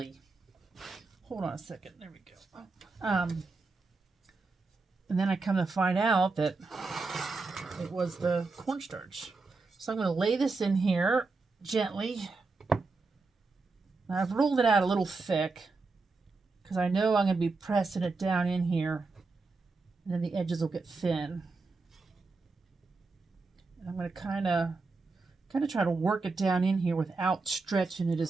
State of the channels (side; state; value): left; quieter; 3.9 dB